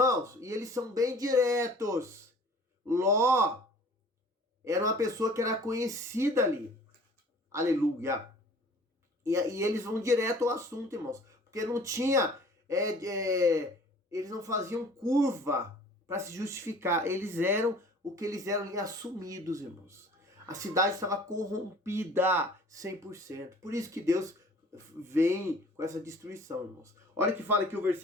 e eles são bem diretos. Ló era uma pessoa que era conhecida ali. Aleluia. E eles vão direto ao assunto, irmãos. Porque não tinha... eles não faziam curva para se justificar. Eles eram o que eles eram ali, assumidos, irmãos. A cidade estava corrompida 100%. Por isso que Deus vem com essa destruição, irmãos. Olha que fala aqui o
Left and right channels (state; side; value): normal; both; correlation 0.49